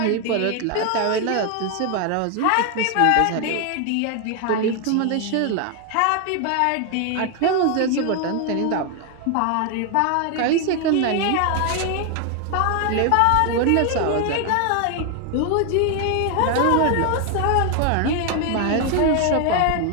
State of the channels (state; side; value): different; both; correlation 0.01